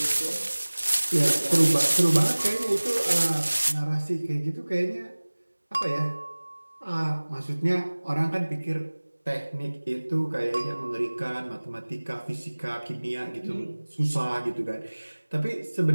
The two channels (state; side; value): inverted; both; correlation -1.00